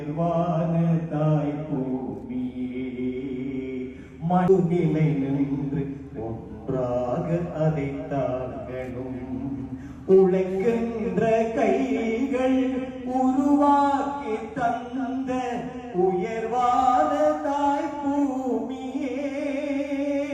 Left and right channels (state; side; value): identical; both; correlation 1.00